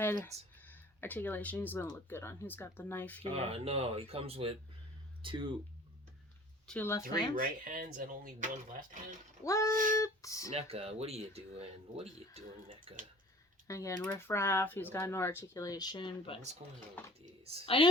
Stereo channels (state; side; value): normal; both; correlation 0.48